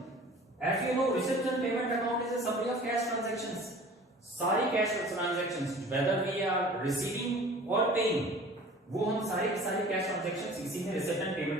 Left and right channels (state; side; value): normal; both; correlation 0.45